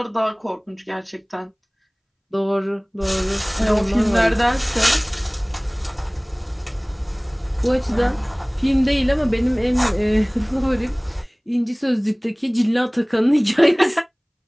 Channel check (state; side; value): identical; both; correlation 1.00